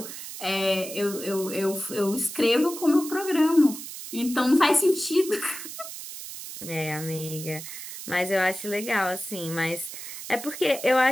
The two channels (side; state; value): right; noise; hiss, 10 dB below the sound